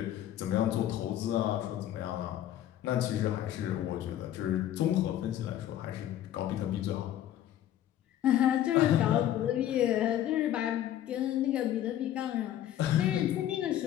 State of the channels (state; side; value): quieter; right; 11.9 dB